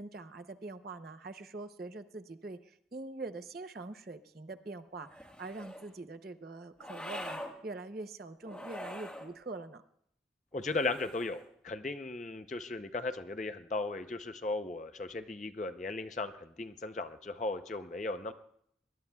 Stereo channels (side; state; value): both; normal; correlation 0.48